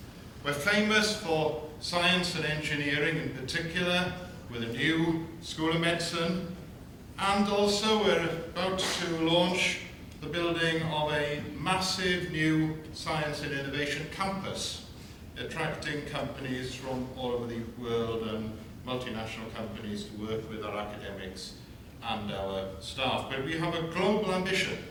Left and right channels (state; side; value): identical; both; correlation 1.00